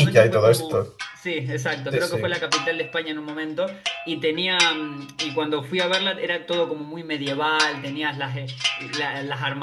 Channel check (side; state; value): both; identical; correlation 1.00